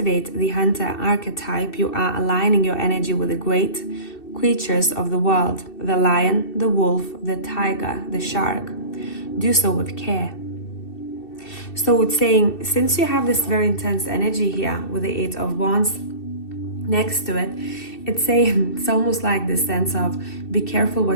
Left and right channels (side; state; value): right; late; 2.7 ms